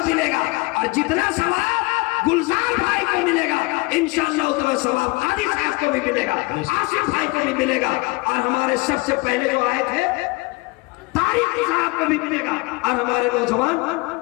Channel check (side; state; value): right; quieter; 24.9 dB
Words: मिलेगा, और जितना सवाब गुलजार भाई को मिलेगा इंशाअल्लाह उतना सवाब कादी साहब को भी मिलेगा, आसिफ भाई को भी मिलेगा, और हमारे सबसे पहले जो आए थे तारिक साहब को भी मिलेगा, और हमारे नौजवान